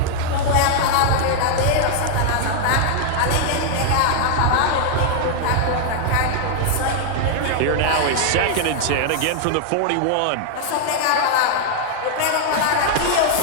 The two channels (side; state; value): both; different; correlation 0.00